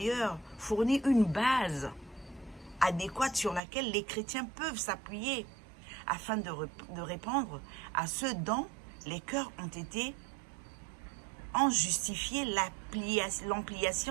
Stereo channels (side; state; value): left; drops out; at 3.6 s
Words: fournit une base adéquate sur laquelle les chrétiens peuvent s'appuyer afin de répondre à ce dont les cœurs ont justifié